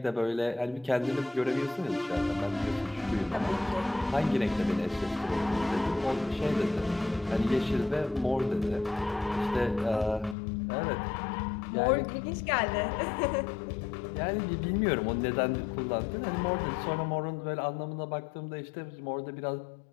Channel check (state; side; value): drops out; right; at 10.4 s